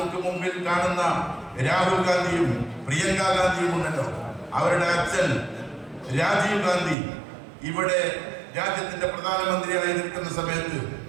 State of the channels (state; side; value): drops out; left; at 7.0 s